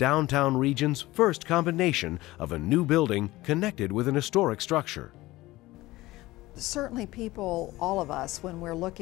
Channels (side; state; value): right; quieter; 18.5 dB